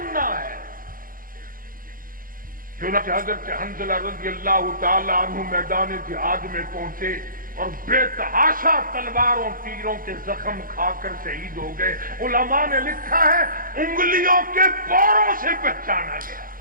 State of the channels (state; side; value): late; left; 0.41 ms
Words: ہے. چنانچہ حضرت حنظلہ رضی اللہ تعالی عنہ میدان جہاد میں پہنچے اور بے تحاشا تلواروں تیروں کے زخم کھا کر شہید ہو گئے. علماء نے لکھا ہے انگلیوں کے پوروں سے پہچانا گیا.